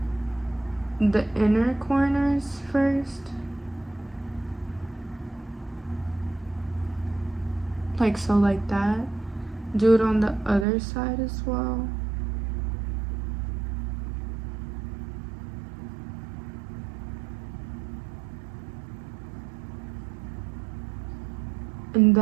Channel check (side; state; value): left; drops out; at 10.7 s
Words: the inner corners first, like so, like that. Do it on the other side as well. And